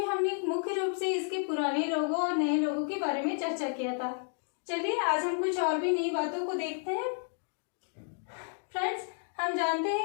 हमने मुख्य रूप से इसके पुराने लोगों और नए लोगों के बारे में चर्चा किया था। चलिए आज हम कुछ और भी नई बातों को देखते हैं। फ्रेंड्स, हम जानते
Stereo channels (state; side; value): silent; right; 57 dB below the other